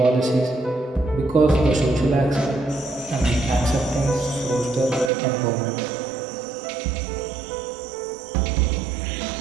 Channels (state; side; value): drops out; left; at 5.1 s